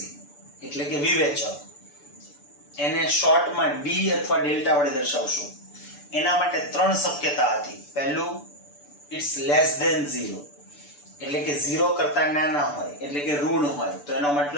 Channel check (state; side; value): late; right; 6.9 ms